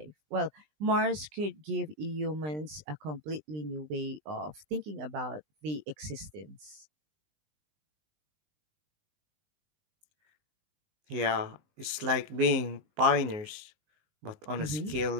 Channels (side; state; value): left; late; 20 ms